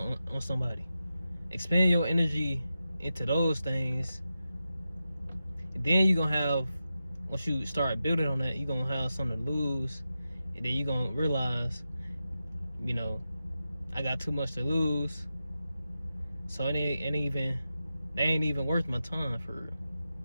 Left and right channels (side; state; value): both; inverted; correlation -0.91